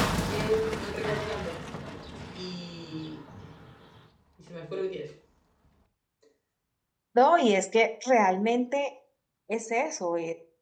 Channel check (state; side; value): identical; both; correlation 1.00